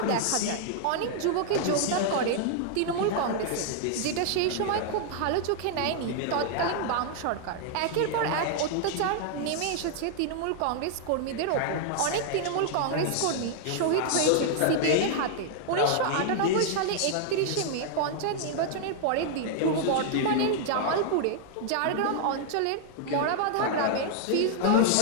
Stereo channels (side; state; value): both; different; correlation -0.01